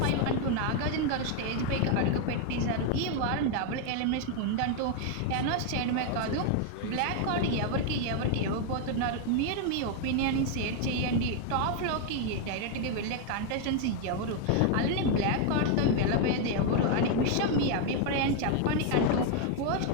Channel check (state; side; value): different; both; correlation 0.01